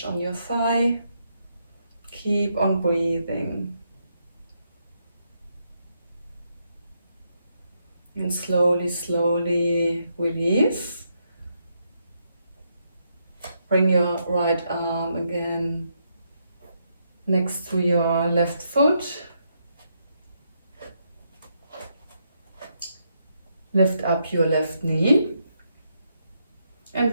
on your thigh. Keep on breathing. And slowly, slowly release. Bring your right arm again next to your left foot. Lift up your left knee. And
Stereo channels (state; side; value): inverted; both; correlation -0.78